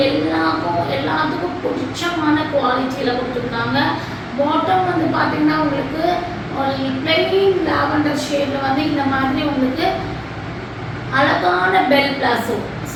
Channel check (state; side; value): identical; both; correlation 1.00